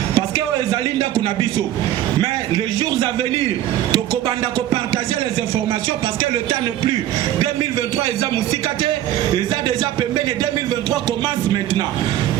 parce que o ezali nda kunabiso. Mais les jours à venir, tokobanda ko partager les informations parce que le temps n'est plus. 2023 eza musikate, eza déjà pembeni 2023 commence maintenant.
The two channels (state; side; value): quieter; left; 12.7 dB